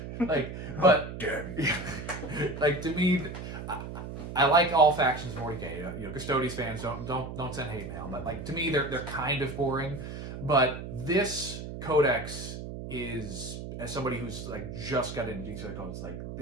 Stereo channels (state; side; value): noise; right; hum, 8 dB below the sound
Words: But like to me, I like all factions of 40K. Custodies fans don't send hate mail, but like to me they're kind of boring. But this codex is, as somebody who's like just got into Genestealer codes, like